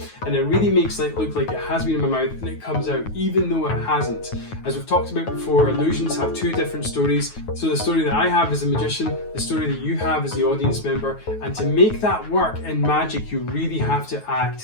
and it really makes it look like it has been in my mouth, and it comes out even though it hasn't. As we've talked about before, illusions have two different stories. So the story that I have as a magician, the story that you have as the audience member, and to make that work in magic, you really have to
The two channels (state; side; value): late; right; 9.4 ms